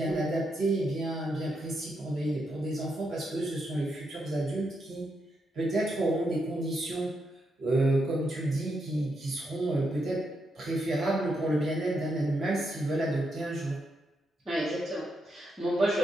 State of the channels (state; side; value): normal; both; correlation 0.82